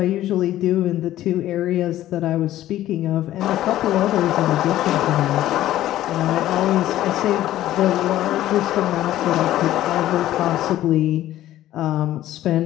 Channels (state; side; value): quieter; right; 13.7 dB